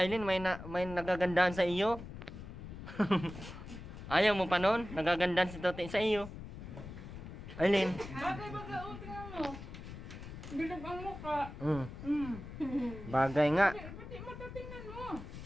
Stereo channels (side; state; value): left; noise; rumble, 11 dB below the sound